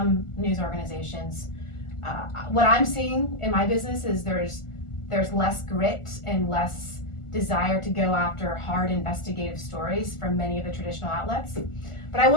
news organizations. What I'm seeing in my business is there's less grit and less desire to go after hard investigative stories from many of the traditional outlets. But I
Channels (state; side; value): late; right; 1.4 ms